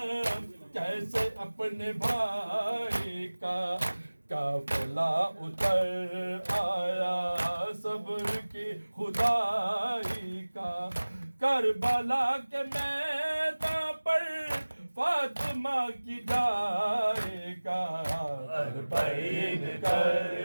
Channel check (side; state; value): both; inverted; correlation -1.00